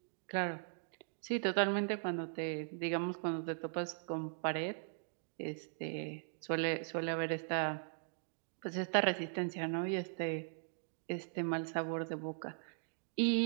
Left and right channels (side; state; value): left; silent; digital silence